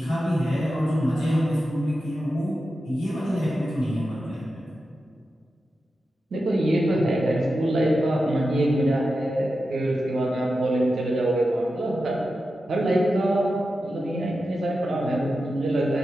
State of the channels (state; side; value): normal; both; correlation 0.91